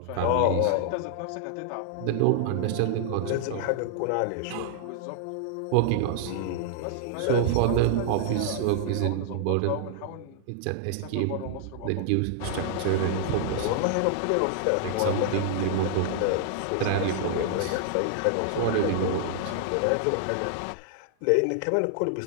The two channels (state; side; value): different; both; correlation -0.01